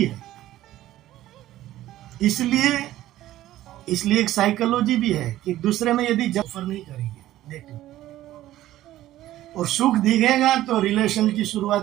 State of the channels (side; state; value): left; quieter; 14.4 dB